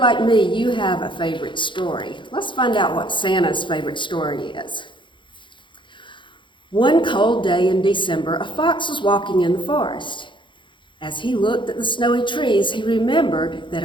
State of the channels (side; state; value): right; late; 0.23 ms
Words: like me, you have a favorite story. Let's find out what Santa's favorite story is. One cold day in December, a fox was walking in the forest. As he looked at the snowy trees, he remembered that